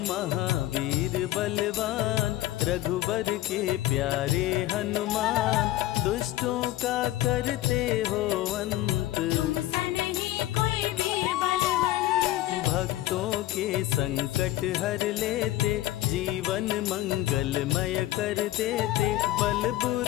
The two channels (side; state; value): right; quieter; 15.4 dB